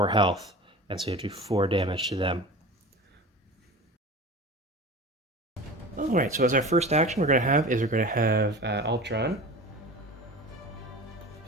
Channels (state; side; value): normal; both; correlation 0.35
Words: health. And so you have to do 4 damage to them. Alright, so as our first action we're going to have Ultron